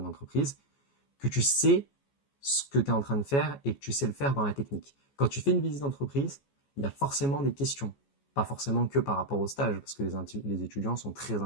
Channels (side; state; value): right; late; 14 ms